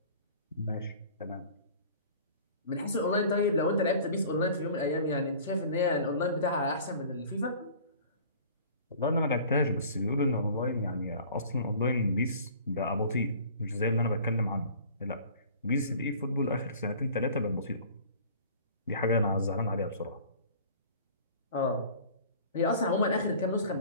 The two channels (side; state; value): both; inverted; correlation -0.46